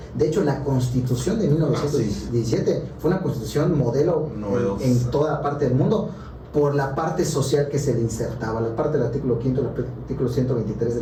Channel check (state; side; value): identical; both; correlation 1.00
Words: De hecho, la Constitución de 1917 fue una Constitución modelo en toda parte del mundo, por la parte social que se le insertaba. La parte del artículo 5, el artículo 123 de